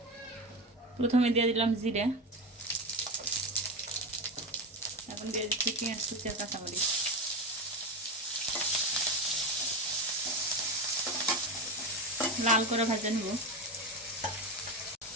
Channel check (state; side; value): normal; both; correlation 0.19